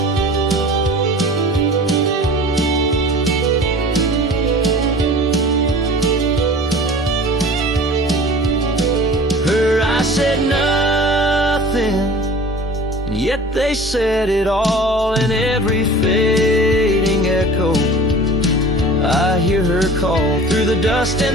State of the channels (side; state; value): both; normal; correlation 0.42